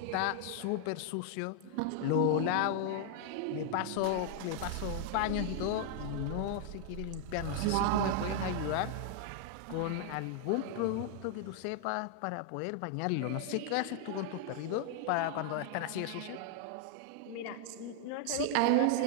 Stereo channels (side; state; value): both; different; correlation 0.00